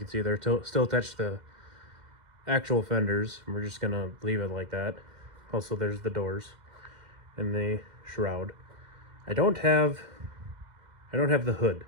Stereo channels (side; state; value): left; late; 2.1 ms